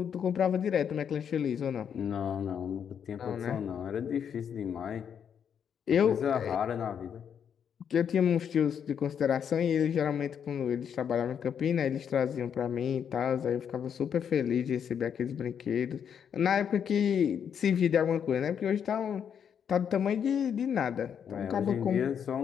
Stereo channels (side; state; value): right; quieter; 8.0 dB